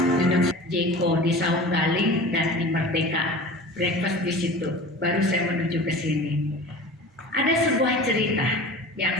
Jeko di Saung Galing dan di Merdeka, breakfast di situ. Baru saya menuju ke sini. Ada sebuah cerita yang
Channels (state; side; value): normal; both; correlation 0.38